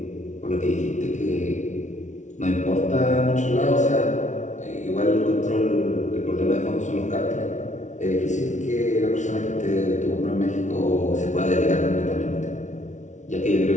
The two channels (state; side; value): late; right; 0.36 ms